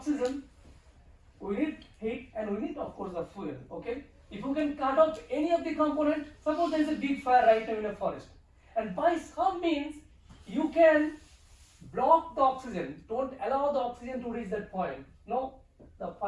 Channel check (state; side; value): identical; both; correlation 1.00